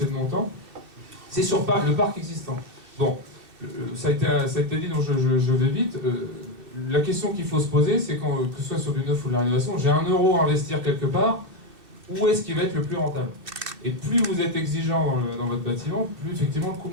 de mon temps, c'est sur le parc existant. Bon, ça a été dit, donc je vais vite. La question qu'il faut se poser, c'est que ce soit sur du neuf ou de la rénovation, j'ai 1 euro à investir quelque part, où est-ce qu'il va être le plus rentable? Et plus vous êtes exigeant dans votre bâtiment, plus effectivement le coût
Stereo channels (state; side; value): late; left; 2.7 ms